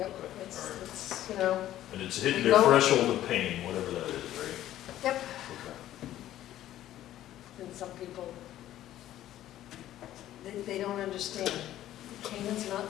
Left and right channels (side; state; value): right; quieter; 13.1 dB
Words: Okay, it's, all right. it's, and it's hitting We their go- threshold of pain, whatever that is, right? Yep. Okay. and some people, they don't understand. Canaan's